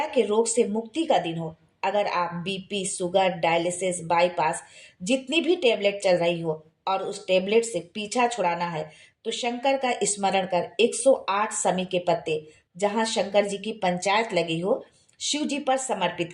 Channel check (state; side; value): identical; both; correlation 1.00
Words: के रोग से मुक्ति का दिन हो। अगर आप बीपी, शुगर, डायलिसिस, बाईपास, जितनी भी टेबलेट चल रही हो और उस टेबलेट से पीछा छुड़ाना है तो शंकर का स्मरण कर 108 शमी के पत्ते जहां शंकर जी की पंचायत लगी हो शिव जी पर समर्पित